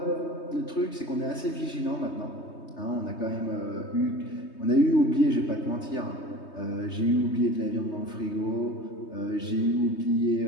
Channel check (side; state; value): right; late; 3.2 ms